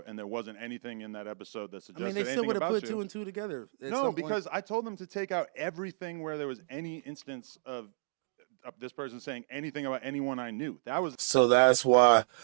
and there wasn't anything in that episode that I suggested mean, they still anything would have about put you. 2 and 2 together. at No, some point. because I told them to take out everything where there was any instance of this person saying anything about anyone I knew. That was So that's why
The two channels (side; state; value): left; silent; digital silence